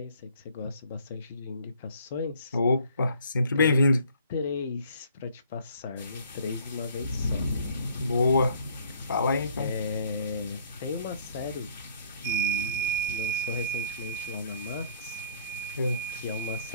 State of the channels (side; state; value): both; inverted; correlation -0.59